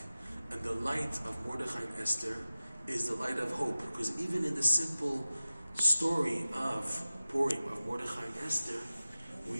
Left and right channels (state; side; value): inverted; both; correlation -0.96